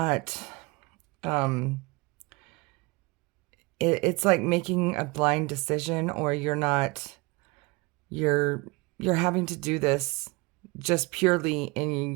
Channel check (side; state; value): left; quieter; 25.8 dB